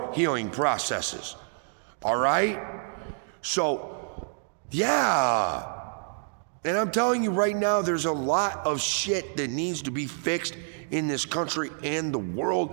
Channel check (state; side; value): silent; left; digital silence